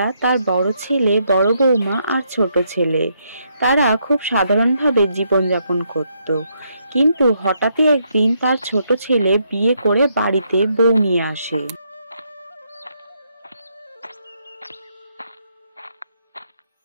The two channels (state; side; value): inverted; both; correlation -0.76